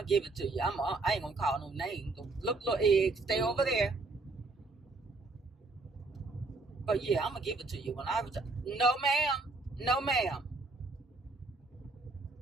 give it to you. I ain't gonna call no names. Look, little egg, stay over there. But yeah, I'm gonna give it to you when I retire. No, ma'am.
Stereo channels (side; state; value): left; quieter; 3.4 dB